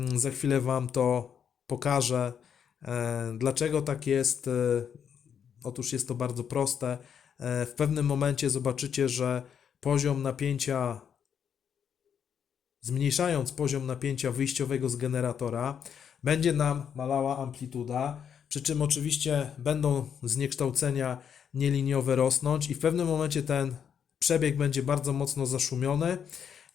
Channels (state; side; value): quieter; right; 7.9 dB